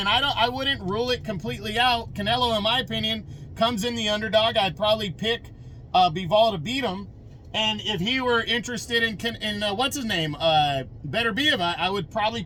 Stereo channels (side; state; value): both; identical; correlation 1.00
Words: I wouldn't rule it completely out. Canelo, in my opinion, comes in the underdog. I'd probably pick Bivol to beat him. And if he were interested in what's his name, Beterbiev, I would probably